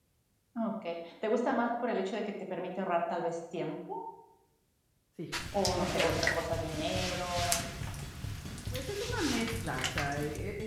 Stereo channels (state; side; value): identical; both; correlation 1.00